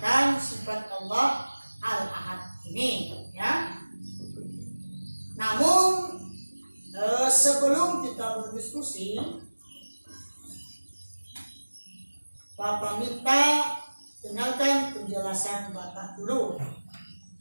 sifat Allah Al-Ahad ini ya. Namun sebelum kita berdiskusi, Bapak minta dengarkan penjelasan Bapak dulu.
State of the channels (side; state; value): both; inverted; correlation -1.00